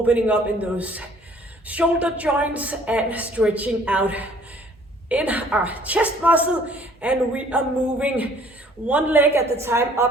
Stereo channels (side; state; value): both; normal; correlation 0.57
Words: up in those shoulder joints and stretching out in our chest muscle. And we are moving one leg at the time